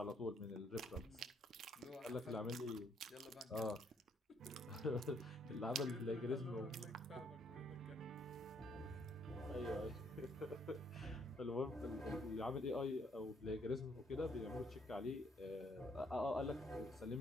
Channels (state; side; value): normal; both; correlation 0.69